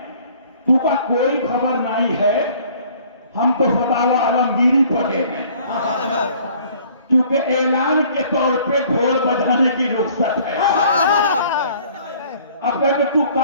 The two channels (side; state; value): both; inverted; correlation -0.55